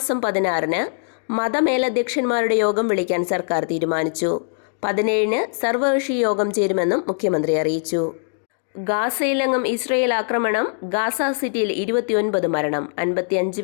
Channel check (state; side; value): silent; right; digital silence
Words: 16-ന് മതമേലധ്യക്ഷന്മാരുടെ യോഗം വിളിക്കാൻ സർക്കാർ തീരുമാനിച്ചു. 17-ന് സർവകക്ഷി യോഗം ചേരുമെന്നും മുഖ്യമന്ത്രി അറിയിച്ചു. ഗാസയിലെങ്ങും ഇസ്രയേൽ ആക്രമണം. ഗാസ സിറ്റിയിൽ 29 മരണം,